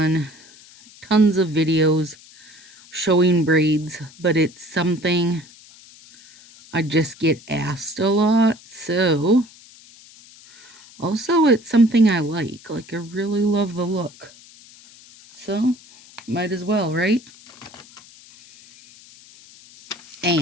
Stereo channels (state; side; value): noise; left; hiss, 23 dB below the sound